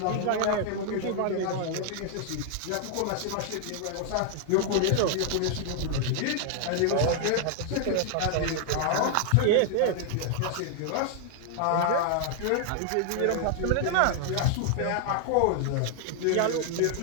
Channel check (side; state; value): both; different; correlation 0.00